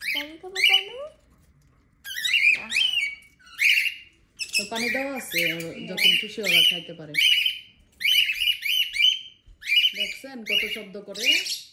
তো পানি দেওয়া আছে, যখন খুশি ওরা খাইতে পারে। দেখছেন কত শব্দ করে?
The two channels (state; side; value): identical; both; correlation 1.00